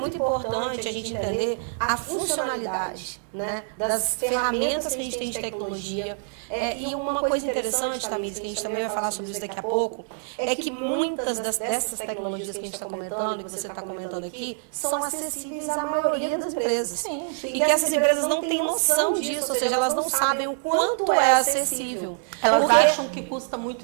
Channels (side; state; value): left; silent; digital silence